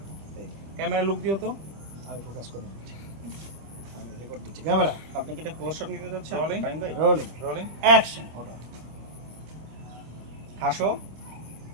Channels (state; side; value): late; left; 26 ms